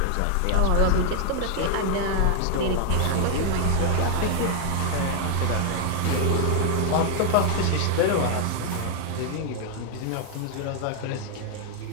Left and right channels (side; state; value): both; different; correlation 0.00